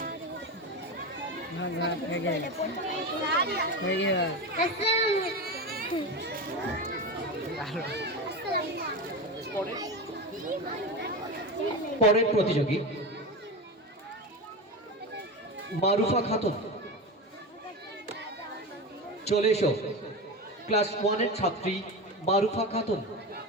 পরের প্রতিযোগী মারুফা খাতুন, চলে এসো। ক্লাস 1 এর ছাত্রী মারুফা খাতুন।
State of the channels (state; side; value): normal; both; correlation 0.22